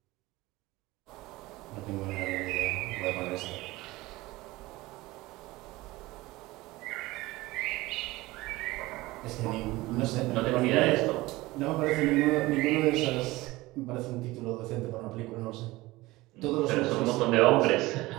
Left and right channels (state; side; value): quieter; left; 19.7 dB